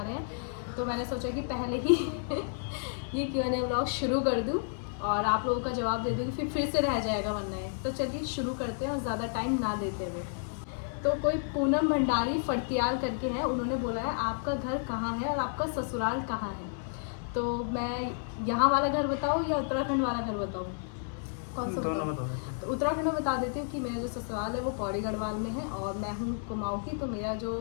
हैं। तो मैंने सोचा कि पहले ही ये Q&A व्लॉग शुरू कर दूँ और आप लोगों का जवाब दे दूँगी, फिर से रह जाएगा वरना है। तो चलिए शुरू करते हैं और ज़्यादा टाइम ना देते हुए। तो कोई पूनम भंडारी फड़तियाल करके है, उन्होंने बोला है आपका घर कहाँ है और आपका ससुराल कहाँ है। तो मैं यहाँ वाला घर बताऊँ या उत्तराखंड वाला घर बताऊँ, कौन सा बताऊँ? तो उत्तराखंड में बता देती हूँ कि मेरा जो ससुराल है वो पौड़ी गढ़वाल में है और मैं हूँ कुमाऊँ की। तो मेरा जो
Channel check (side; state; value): right; silent; 57 dB below the other